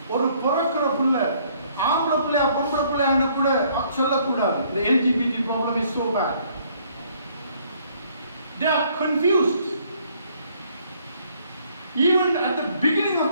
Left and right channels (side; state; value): both; inverted; correlation -0.64